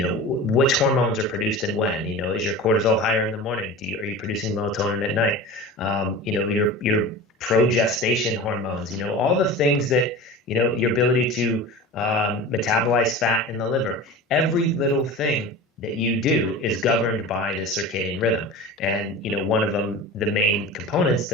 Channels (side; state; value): both; normal; correlation 0.33